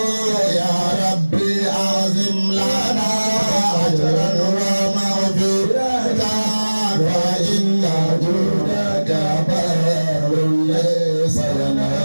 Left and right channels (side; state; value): both; inverted; correlation -1.00